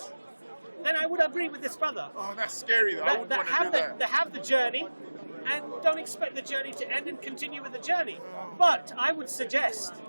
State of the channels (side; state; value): both; inverted; correlation -1.00